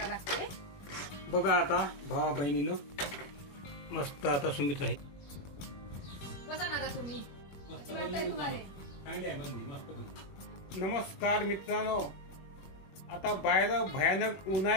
लागते. बघा आता भावा बहिणीनं मस्त आता सुमित राहील. बसा ना तुम्ही. नमस्कार मित्रांनो, आता बाहेर भयानक ऊन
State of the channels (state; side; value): late; right; 21 ms